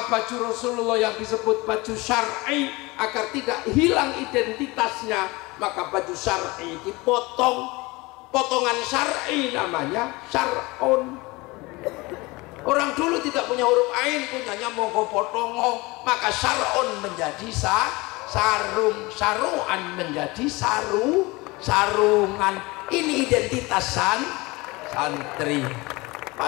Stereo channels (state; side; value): quieter; right; 23.2 dB